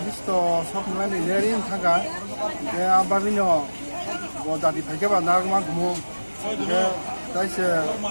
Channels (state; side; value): inverted; both; correlation -1.00